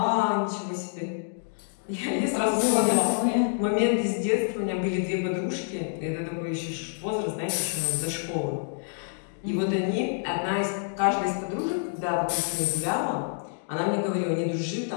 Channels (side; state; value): right; silent; digital silence